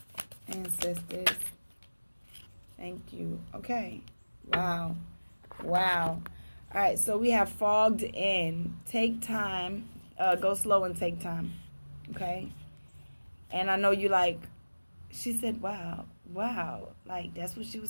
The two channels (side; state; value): both; inverted; correlation -1.00